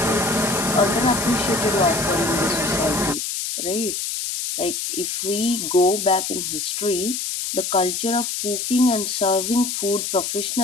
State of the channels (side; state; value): left; noise; hiss, 3 dB below the sound